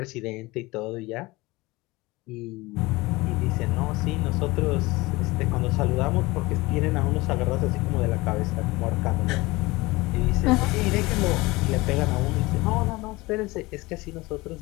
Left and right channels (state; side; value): quieter; right; 21.7 dB